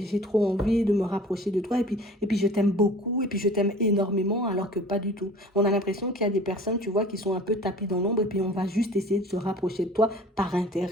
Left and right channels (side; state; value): both; normal; correlation 0.45